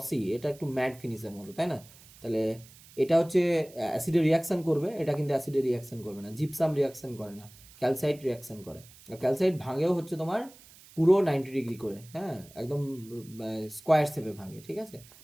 এটা একটু ম্যাট ফিনিশের মতো, তাই না? তাহলে এটা হচ্ছে অ্যাসিডে রিয়াকশান করবে, এটা কিন্তু অ্যাসিডে রিয়াকশান করবে না। জিপসাম রিয়াকশান করে না, ক্যালসাইট রিয়াকশান করে। আর ক্যালসাইট ভাঙেও হচ্ছে তোমার পুরো 90 ডিগ্রি করে, হ্যাঁ, একদম স্কোয়ার শেপে ভাঙে, ঠিক আছে?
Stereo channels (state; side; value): noise; right; hiss, 23 dB below the sound